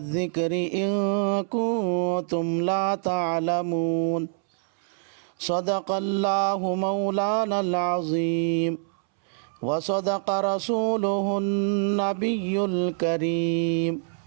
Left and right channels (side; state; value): left; silent; 61 dB below the other